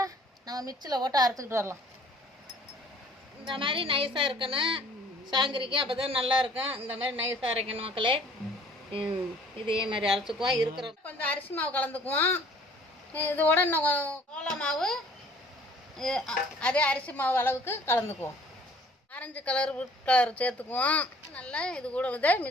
நம்ம மிக்சியில் போட்டு அரைச்சிக்கிட்டு வரலாம். இந்த மாதிரி நைஸாக இருக்கணும் சாங்கிரிக்கு, அப்போ தான் நல்லா இருக்கும். இந்த மாதிரி நைஸாக அரைக்கணும் மக்களே. இதே மாதிரி அரைச்சிக்குவோம். இருக்கிற கொஞ்சம் அரிசி மாவு கலந்துக்குவோம். இதோட இன்னும் சோள மாவு அதே அரிசி மாவு அளவுக்கு கலந்துக்குவோம். ஆரஞ்சு கலர் ஃபுட் கலர் சேர்த்துக்குவோம். நல்லா இது கூட இதை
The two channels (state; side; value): normal; both; correlation 0.54